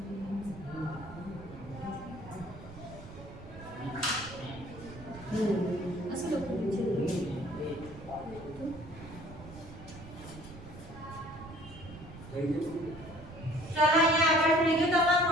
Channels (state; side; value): noise; right; rumble, 15 dB below the sound